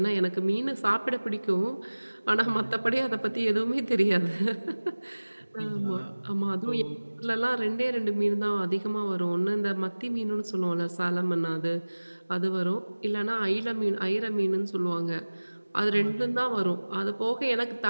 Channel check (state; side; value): inverted; both; correlation -1.00